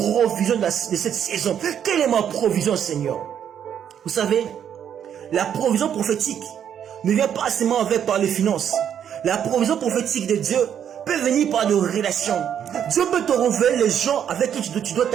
de cette saison. Quelle est ma provision, Seigneur? Vous savez, la provision prophétique ne vient pas seulement par les finances. La provision prophétique de Dieu peut venir par des relations. Dieu peut te révéler les gens avec qui tu dois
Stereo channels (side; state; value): left; quieter; 9.0 dB